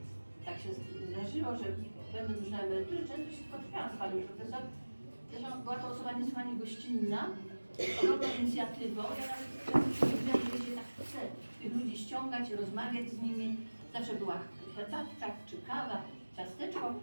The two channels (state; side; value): inverted; both; correlation -1.00